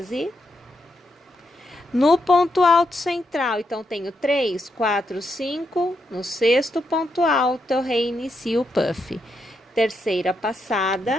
No ponto alto central, então, tenho 3, 4, 5. No sexto ponto alto, eu reinicio o puff. Terceira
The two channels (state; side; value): normal; both; correlation 0.81